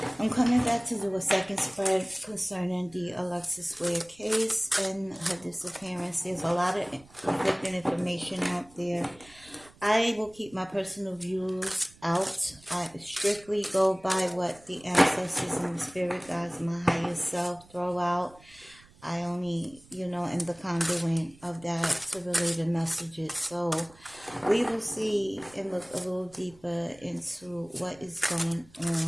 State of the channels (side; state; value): right; noise; rumble, 25 dB below the sound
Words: I'm coming back to do a second spread concerning the Alexis Ware case and her disappearance. There's a lot of conflicting information out there. I will keep my personal views out. I strictly go by what the ancestors and the spirit guides, my higher self, throw out. I only, am the conduit of that to relay the messages. So we will see and look a little deeper into what is going